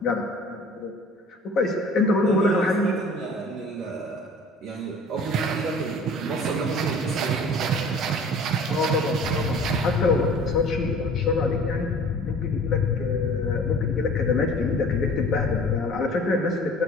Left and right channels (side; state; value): both; normal; correlation 0.46